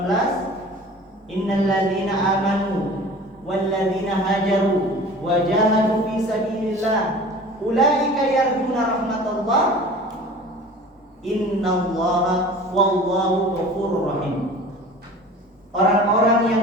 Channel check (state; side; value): normal; both; correlation 0.42